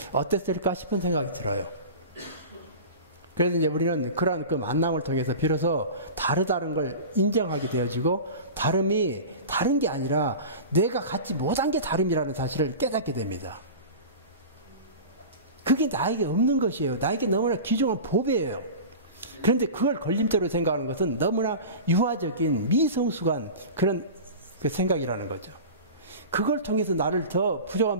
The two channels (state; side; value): inverted; both; correlation -0.32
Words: 어땠을까 싶은 생각이 들어요. 그래서 이제 우리는 그러한 그 만남을 통해서 비로소 다르다는 걸 인정하게 되어지고, 다름이 다른 게 아니라 내가 갖지 못한 게 다름이라는 사실을 깨닫게 됩니다. 그게 나에게 없는 것이에요. 나에게 너무나 귀중한 보배예요. 그런데 그걸 걸림돌로 생각하는 것은 너무나 유아적인 미성숙한 그런 그 생각이라는 거죠. 그걸 통해서 나를 더